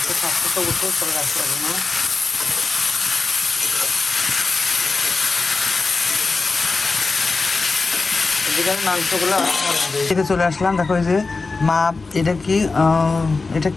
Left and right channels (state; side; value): quieter; right; 3.9 dB